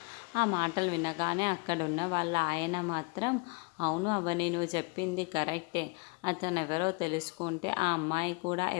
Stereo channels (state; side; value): quieter; right; 31.2 dB